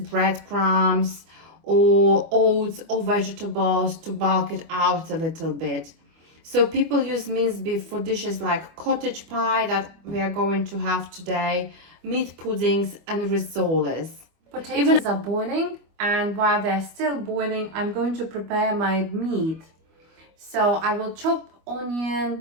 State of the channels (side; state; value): left; late; 25 ms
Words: breadcrumbs or oats or vegetables to bulk it out a little bit. So people use minced beef for dishes like cottage pie that we are going to have today, meat puddings and rissoles. Potatoes are boiling, and while they're still boiling, I'm going to prepare my meat. So I will chop